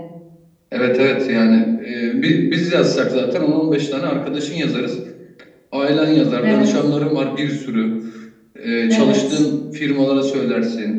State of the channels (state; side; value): identical; both; correlation 1.00